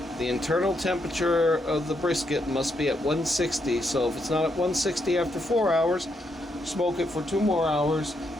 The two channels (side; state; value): both; normal; correlation 0.78